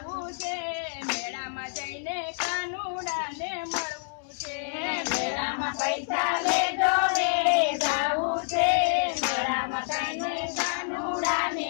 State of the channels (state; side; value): silent; right; 59 dB below the other